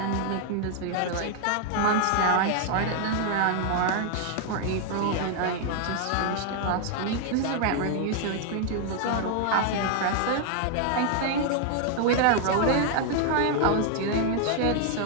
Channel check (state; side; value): different; both; correlation 0.00